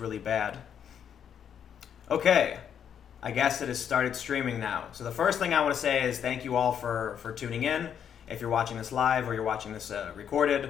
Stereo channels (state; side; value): quieter; right; 8.5 dB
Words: bad. Okay, I guess it has started streaming now. So the first thing I want to say is thank you all for tuning in. If you're watching this live or you're watching this